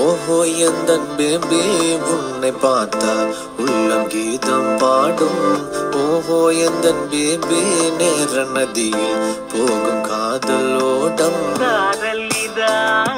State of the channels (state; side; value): identical; both; correlation 1.00